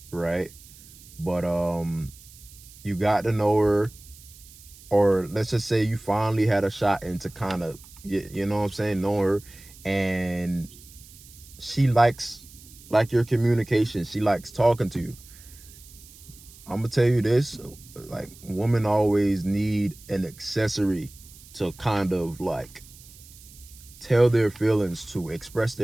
right? But you got to know her, or let's just say you finally had a shot into kind of, you know what I'm saying, know her, and she likes your communication. She likes talking to you. I'm gonna tell you this, like, women always need an accessory to kind of like tell their feelings to, express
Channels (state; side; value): noise; right; hiss, 21 dB below the sound